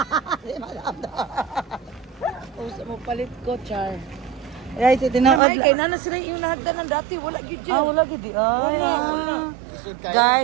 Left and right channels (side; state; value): left; drops out; at 5.4 s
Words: Usa mo palit ko char. Right, tinaod. Kay nana sila yung nahagdan ng dati wala gid. Wala gid.